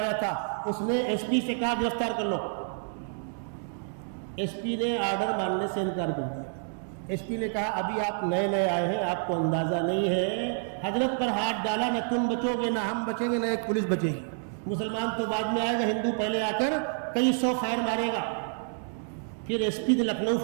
آیا تھا. اس نے ایس پی سے کہا گرفتار کر لو. ایس پی نے آرڈر ماننے سے انکار کر دیا. ایس پی نے کہا ابھی آپ نئے آئے ہیں، آپ کو اندازہ نہیں ہے. حضرت پر ہاتھ ڈالا، نہ تم بچو گے نہ ہم بچیں گے نہ ایک پولیس بچے گی. مسلمان تو بعد میں آئے گا، ہندو پہلے آ کر کئی 100 فائر مارے گا. پھر ایس پی نے لکھنؤ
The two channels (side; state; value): left; silent; 59 dB below the other